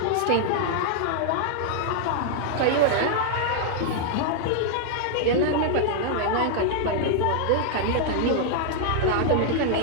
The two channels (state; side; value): different; both; correlation -0.01